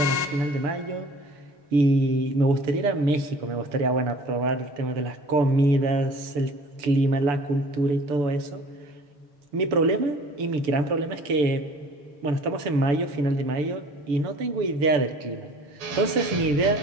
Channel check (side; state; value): left; late; 7.0 ms